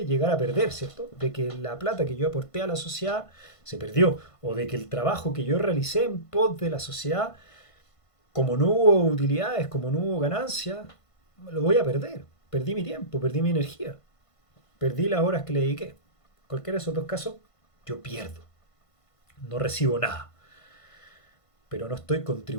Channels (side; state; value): right; late; 1.5 ms